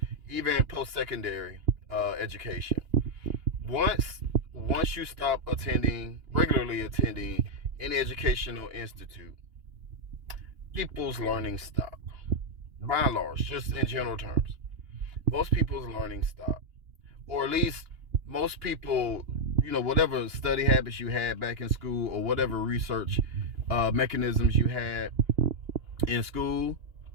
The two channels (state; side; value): late; left; 2.9 ms